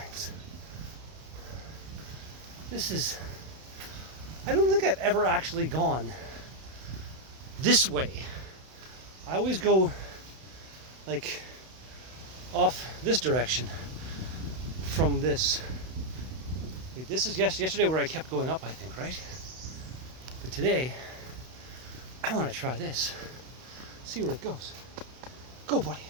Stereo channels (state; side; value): late; left; 32 ms